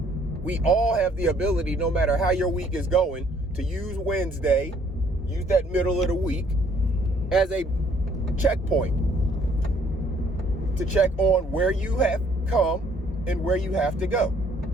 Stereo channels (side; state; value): both; normal; correlation 0.62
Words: We all have the ability, no matter how your week is going, to use Wednesday, use that middle of the week as a checkpoint to check on where you have come and where you have to go.